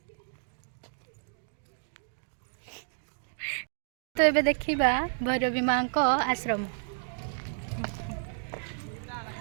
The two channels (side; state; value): left; silent; digital silence